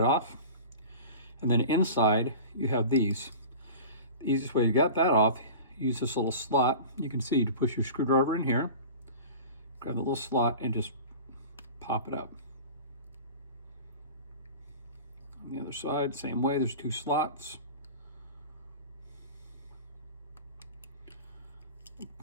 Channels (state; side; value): inverted; both; correlation -0.36